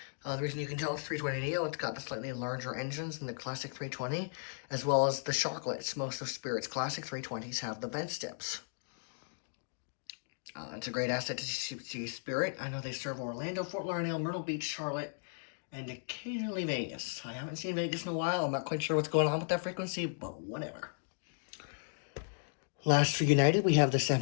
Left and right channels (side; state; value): right; silent; digital silence